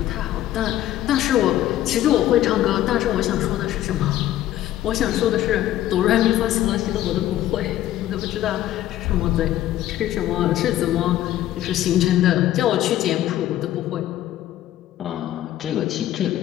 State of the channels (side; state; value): right; quieter; 13.4 dB